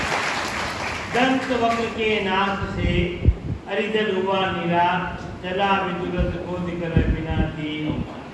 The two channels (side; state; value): both; identical; correlation 1.00